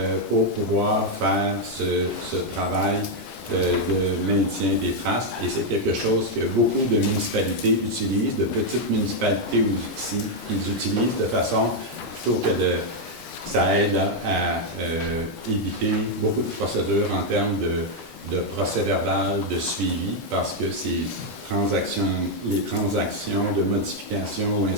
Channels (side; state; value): both; normal; correlation 0.00